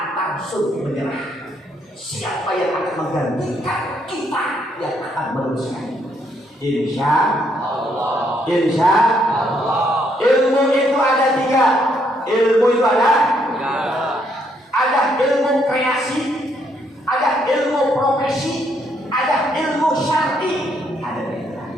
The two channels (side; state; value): both; normal; correlation 0.72